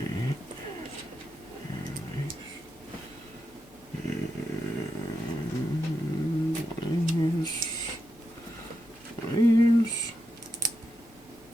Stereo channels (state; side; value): normal; both; correlation 0.86